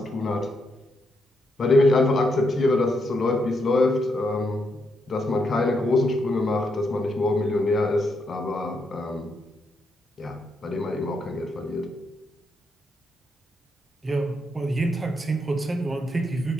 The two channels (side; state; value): both; normal; correlation 0.80